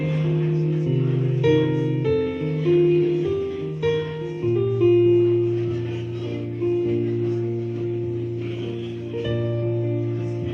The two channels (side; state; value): both; identical; correlation 1.00